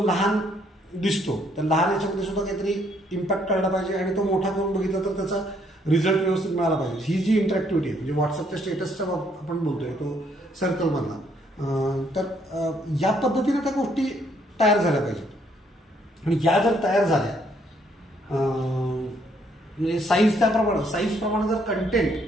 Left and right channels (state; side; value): normal; both; correlation 0.68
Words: लहान दिसतो, तर लहान याच्यामध्ये सुद्धा काहीतरी इम्पॅक्ट करायला पाहिजे आणि तो मोठा करून बघितला तर त्याचा रिझल्ट व्यवस्थित मिळाला पाहिजे. ही जी इंटरॅक्टिव्हिटी आहे म्हणजे व्हॉट्सअपच्या स्टेटसचा आपण बोलतोय तो सर्कलमधला, तर या पद्धतीने त्या गोष्टी तयार झाल्या पाहिजेत. आणि या जर तयार झाल्या म्हणजे साईजप्रमाणे जर